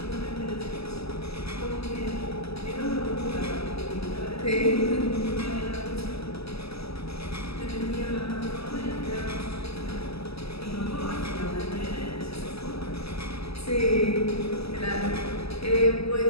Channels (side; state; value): right; late; 0.78 ms